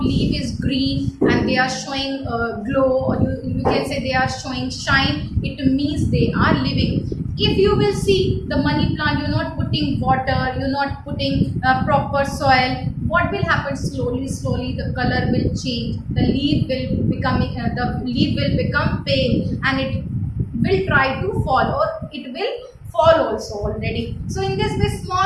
leaf is green and they are showing glow, or you can say they are showing shine, it means they are living. If you will see the money plant, you're not putting water, you're not putting proper soil, what will happen? Slowly the color will change, the leaf will become pale, and it will try to fall, or it will fall also already. So in this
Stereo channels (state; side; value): identical; both; correlation 1.00